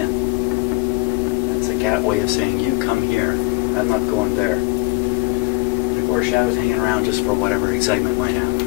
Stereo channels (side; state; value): right; quieter; 21.9 dB